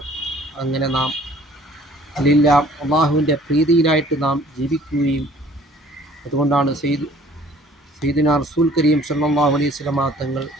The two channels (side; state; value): both; normal; correlation 0.55